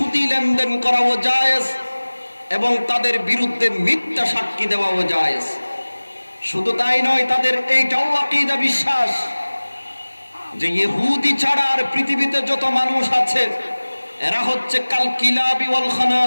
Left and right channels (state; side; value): inverted; both; correlation -1.00